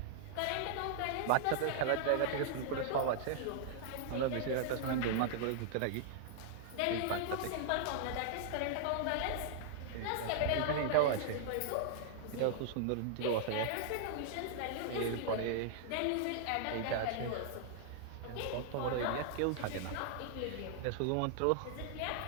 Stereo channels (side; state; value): both; different; correlation -0.01